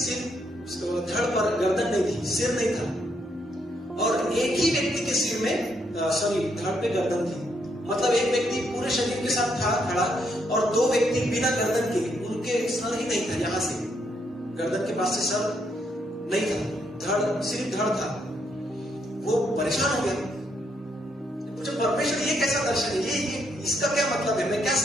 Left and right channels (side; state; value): both; normal; correlation 0.75